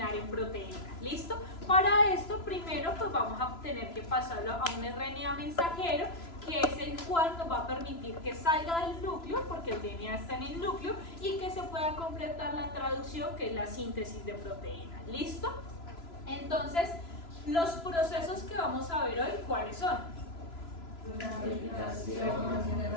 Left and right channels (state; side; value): late; right; 3.0 ms